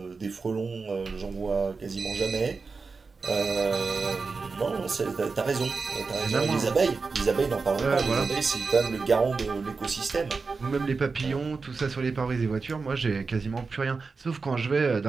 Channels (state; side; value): quieter; left; 4.5 dB